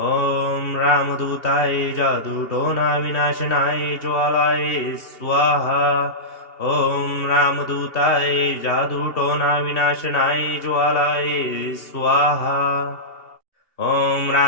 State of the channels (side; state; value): right; late; 2.8 ms